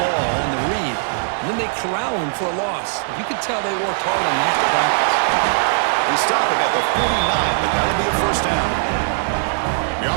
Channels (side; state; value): left; silent; 66 dB below the other